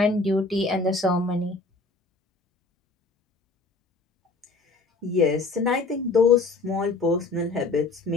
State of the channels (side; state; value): right; quieter; 3.6 dB